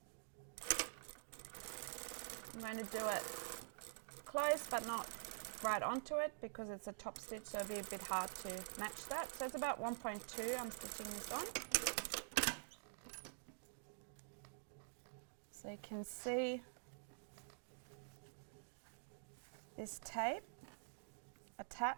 I'm going to do it close but not right onto it because it's a top stitch, so it'll be a bit hard to match that. So it's about 1.2 I'm stitching this on. So you can see this tape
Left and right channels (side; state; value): left; silent; digital silence